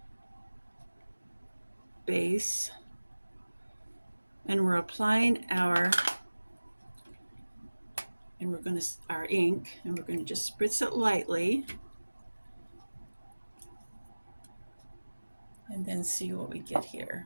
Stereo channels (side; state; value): both; inverted; correlation -1.00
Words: base, And we're applying our ink, and we're going to just spritz it lightly and then see what we get here.